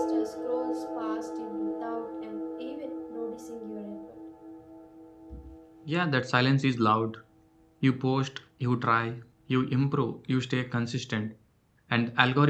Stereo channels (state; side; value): identical; both; correlation 1.00